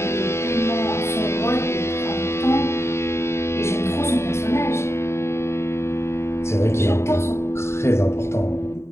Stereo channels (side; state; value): right; late; 0.13 ms